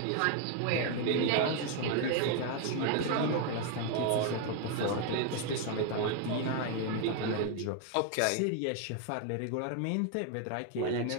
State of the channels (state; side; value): different; both; correlation 0.01